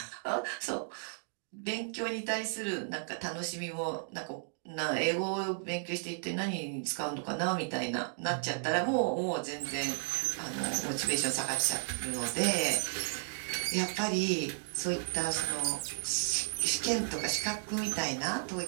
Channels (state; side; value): silent; left; digital silence